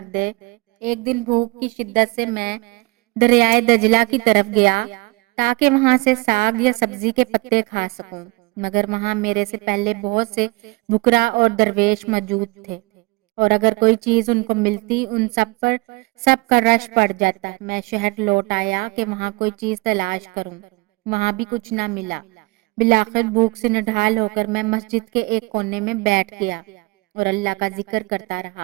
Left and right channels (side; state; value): left; quieter; 25.1 dB